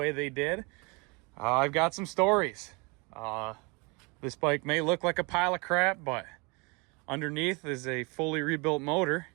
they did, I've got some stories. This bike may look like a pile of crap, but underneath is a fully rebuilt motor.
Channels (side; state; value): left; quieter; 29.3 dB